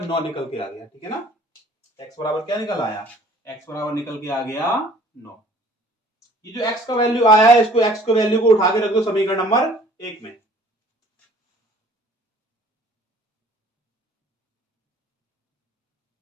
निकल के आ गया। ठीक है ना, x बराबर क्या निकल आया? x बराबर निकल के आ गया 9। ये जो x का वैल्यू आया है, इसको x के वैल्यू को उठा के रख दो समीकरण नंबर 1 में।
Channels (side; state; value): both; normal; correlation 0.54